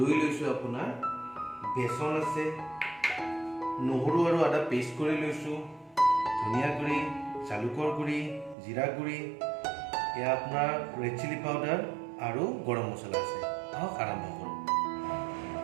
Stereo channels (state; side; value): drops out; left; at 8.6 s